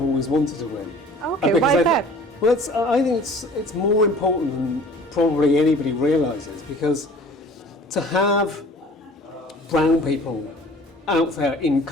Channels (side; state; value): both; normal; correlation 0.47